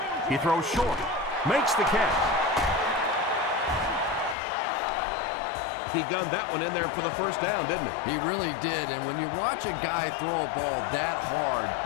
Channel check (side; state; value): right; drops out; at 4.4 s